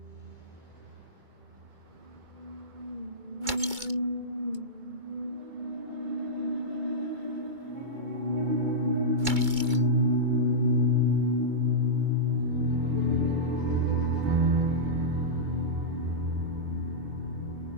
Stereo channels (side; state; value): left; late; 2.2 ms